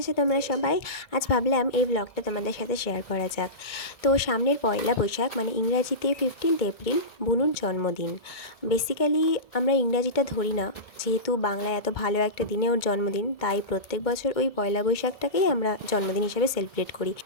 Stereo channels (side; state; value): right; late; 1.6 ms